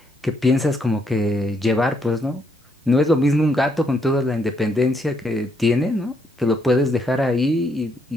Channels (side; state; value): both; normal; correlation 0.74